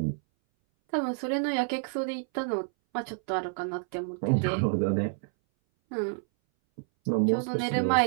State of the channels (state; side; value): silent; left; 59 dB below the other